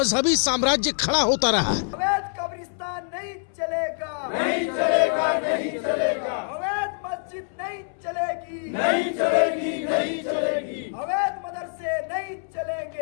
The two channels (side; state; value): right; silent; 62 dB below the other